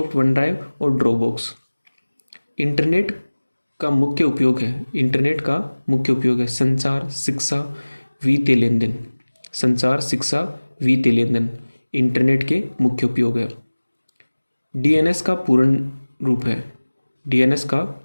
one drive और ड्रॉपबॉक्स। इंटरनेट का मुख्य उपयोग है संचार, शिक्षा, वित्तीय लेन देन। संचार, शिक्षा, वित्तीय लेन देन इंटरनेट के मुख्य उपयोग है। डीएनएस का पूर्ण रूप है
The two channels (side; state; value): both; inverted; correlation -1.00